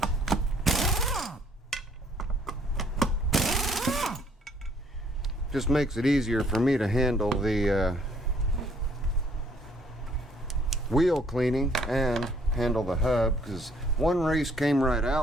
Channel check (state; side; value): normal; both; correlation 0.63